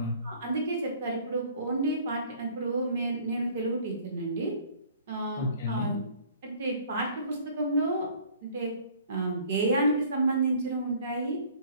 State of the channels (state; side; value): inverted; both; correlation -0.54